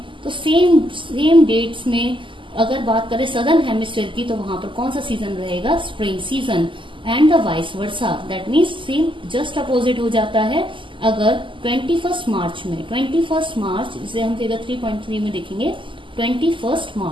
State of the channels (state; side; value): late; left; 0.25 ms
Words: तो सेम डेट्स में अगर बात करें सदर्न हेमिस्फीयर की, तो वहां पर कौन सा सीजन रहेगा, spring season. And the vice versa, that means same just opposite हो जाता है। अगर 21 मार्च में, 21 मार्च इसे हम फिगर 3.3 में देखेंगे, 21